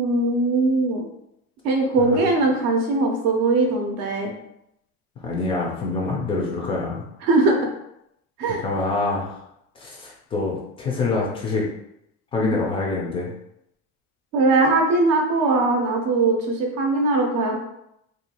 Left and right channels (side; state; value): both; normal; correlation 0.17